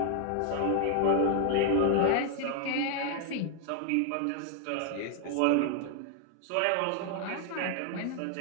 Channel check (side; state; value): both; different; correlation 0.00